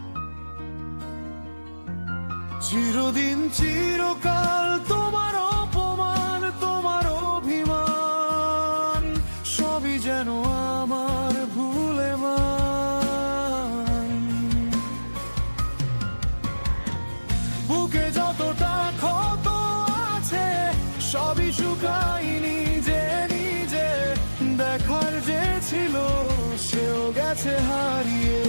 চিরদিন চিরকাল তোমার অপমান, তোমার অভিমান, সবই যেন আমার ভুলে মান। বুকে যতটা ক্ষত আছে সবই শুকাই নিজে নিজে, দেখার যে ছিল সেও গেছে হারিয়ে।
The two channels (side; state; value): both; inverted; correlation -1.00